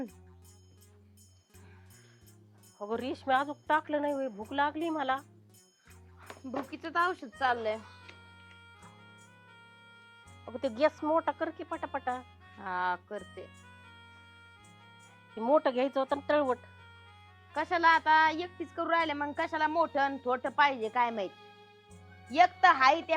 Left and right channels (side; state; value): both; identical; correlation 1.00